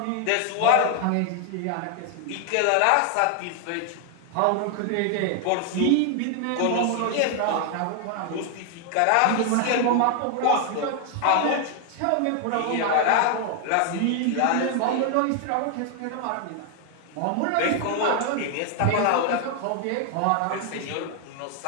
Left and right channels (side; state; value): both; different; correlation 0.00